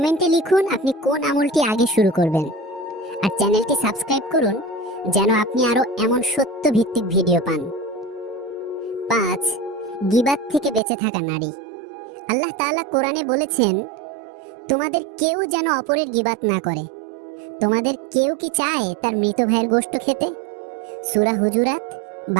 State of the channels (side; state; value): left; drops out; at 10.8 s